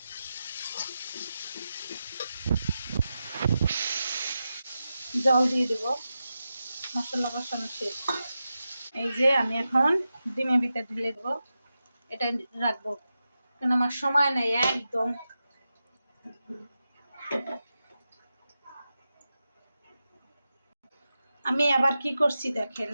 জল দিয়ে দেবো, মশলা কষানো শেষ। এই যে আমি এখন ডিমের ভিতরে ঢেলে দেবো, এটা রাখবো কারণ আমার সময় নেই একদম। আমি আবার কি করছি দেখেন,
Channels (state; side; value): inverted; both; correlation -0.91